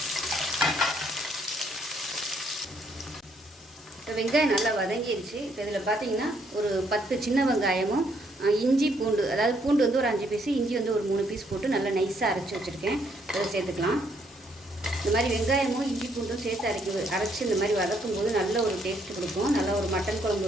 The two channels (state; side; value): normal; both; correlation 0.70